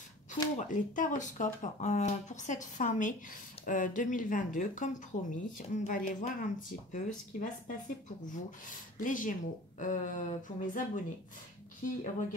pour les taroscopes pour cette fin mai 2022. Comme promis, on va aller voir un petit peu ce qui va se passer pour vous, les Gémeaux, pour mes abonnés qui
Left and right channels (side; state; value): both; normal; correlation 0.42